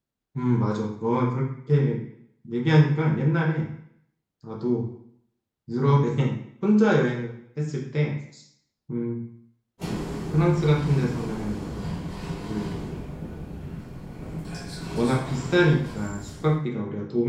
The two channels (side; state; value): both; identical; correlation 1.00